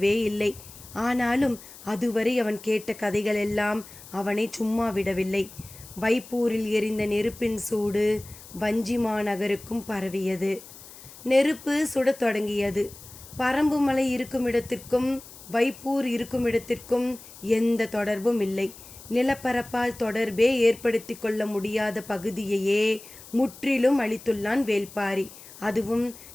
இல்லை. ஆனாலும் அதுவரை அவன் கேட்ட கதைகளெல்லாம் அவனை சும்மா விடவில்லை. வைப்பூரில் எரிந்த நெருப்பின் சூடு வஞ்சிமா நகருக்கும் பரவியது. நெருப்பு சுடத் தொடங்கியது. பரம்புமலை இருக்குமிடத்திற்கும் வைப்பூர் இருக்குமிடத்திற்கும் எந்த தொடர்பும் இல்லை. நிலப்பரப்பால் தொடர்பே ஏற்படுத்தி கொள்ள முடியாத பகுதியையே முற்றிலும் அழித்துள்ளான் வேள்பாரி. அதுவும்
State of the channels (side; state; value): left; noise; hiss, 18 dB below the sound